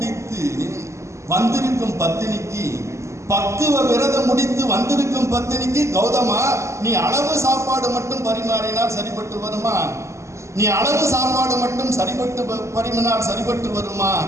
வந்திருக்கும் பத்தினிக்கு, பக்குவ விரதம் முடித்து வந்திருக்கும் பத்தினிக்கு, கௌதமா, நீ அளவு சாப்பாடு மட்டும் பரிமாறினால் சரிபட்டு வருமா? நீ அளவு சாப்பாடு மட்டும் பரிமாறினால் சரிபட்டு வருமா?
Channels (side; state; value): left; late; 0.14 ms